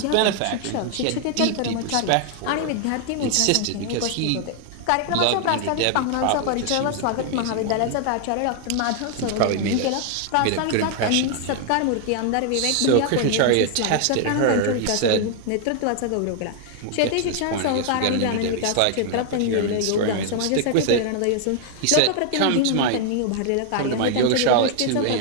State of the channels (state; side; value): different; both; correlation 0.00